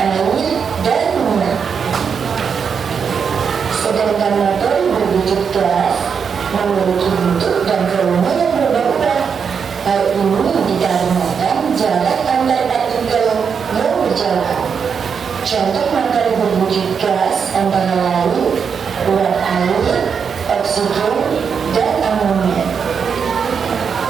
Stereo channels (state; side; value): quieter; left; 6.5 dB